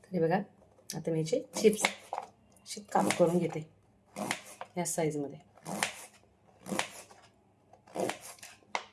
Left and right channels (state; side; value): identical; both; correlation 1.00